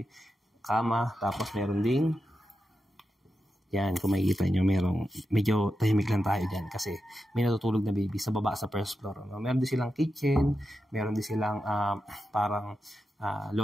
kama, tapos meron ding, yan, kung makikita nyo, medyo tahimik lang tayo dyan kasi may natutulog na baby sa baba sa first floor. No? Meron din silang kitchen, meron din silang parang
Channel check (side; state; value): both; normal; correlation 0.89